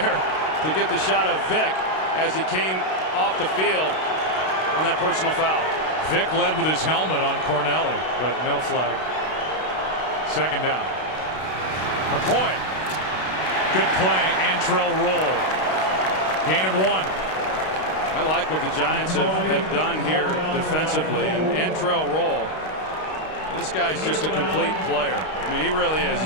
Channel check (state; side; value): late; right; 32 ms